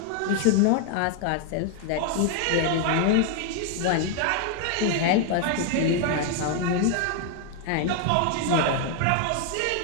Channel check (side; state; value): both; different; correlation 0.00